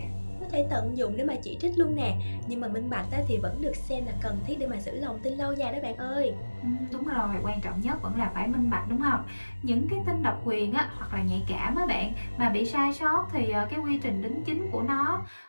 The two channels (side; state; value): both; inverted; correlation -1.00